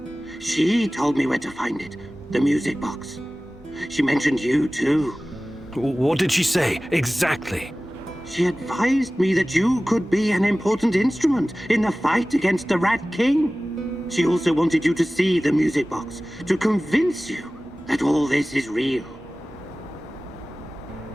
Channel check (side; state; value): both; normal; correlation 0.97